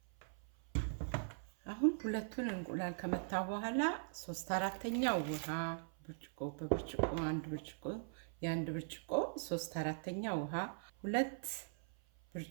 አሁን ሁለቱን እንቁላል ከመታው በኋላ 3/4 ውሃ ብርጭቆ በብርጭቆ አንድ ብርጭቆ የአንድ ብርጭቆ 3/4 ውሃ 2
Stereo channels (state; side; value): silent; left; 50 dB below the other